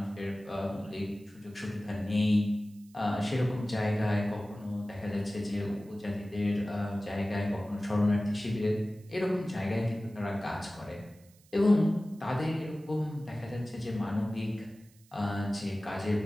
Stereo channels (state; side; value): noise; right; hiss, 29 dB below the sound